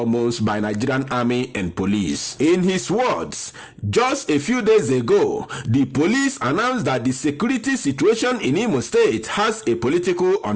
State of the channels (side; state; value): both; identical; correlation 1.00